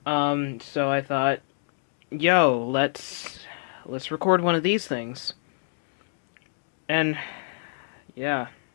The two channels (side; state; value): right; silent; digital silence